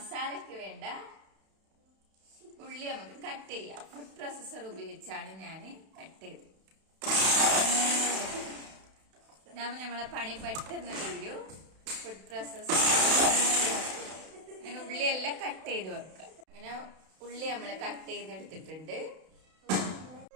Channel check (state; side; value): late; left; 32 ms